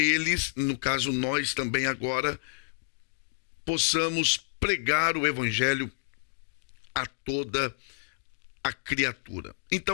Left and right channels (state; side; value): silent; right; digital silence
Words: no caso nós também agora, possamos pregar o evangelho a toda a criatura.